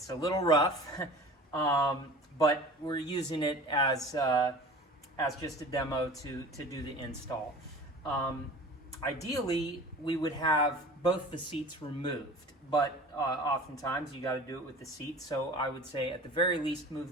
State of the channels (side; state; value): both; normal; correlation 0.40